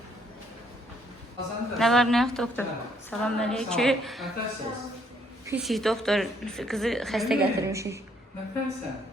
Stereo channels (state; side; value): normal; both; correlation 0.68